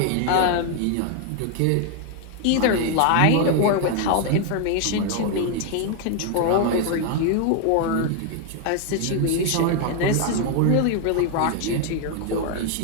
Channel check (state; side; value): different; both; correlation 0.00